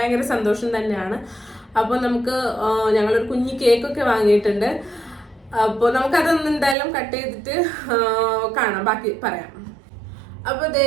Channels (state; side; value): drops out; left; at 6.8 s